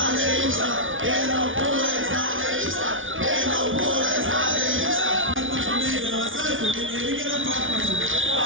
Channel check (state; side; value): late; left; 0.57 ms